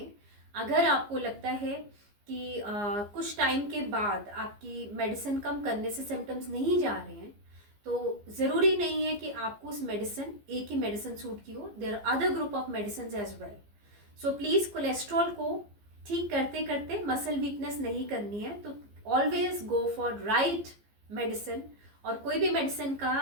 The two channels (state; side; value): late; left; 15 ms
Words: अगर आपको लगता है कि कुछ टाइम के बाद आपकी मेडिसिन कम करने से सिम्टम्स नहीं जा रहे हैं, तो ज़रूरी नहीं है कि आपको उस मेडिसिन, एक ही मेडिसिन सूट की हो. There are other group of medicine as well. So please, cholesterol को ठीक करते करते मसल वीकनेस नहीं करनी है. तो always go for right medicine. और कोई भी मेडिसिन